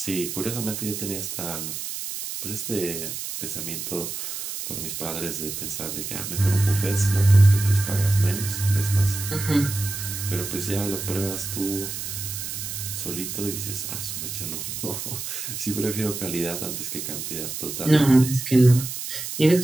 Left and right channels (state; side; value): noise; right; hiss, 6 dB below the sound